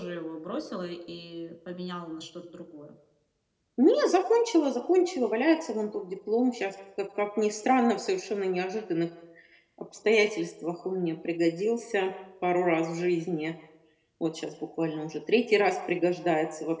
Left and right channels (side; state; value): both; identical; correlation 1.00